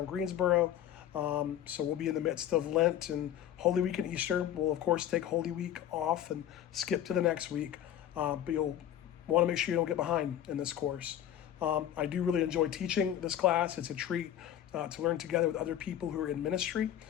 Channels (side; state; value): right; quieter; 10.9 dB